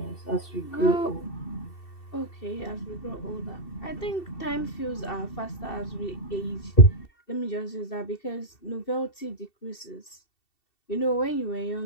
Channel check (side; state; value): right; late; 2.7 ms